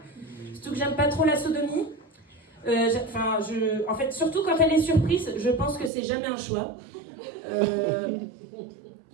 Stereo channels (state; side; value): drops out; left; at 5.9 s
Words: Surtout que j'aime pas trop la sodomie. En fait, surtout quand elle est surprise, je pense que c'est jamais un choix.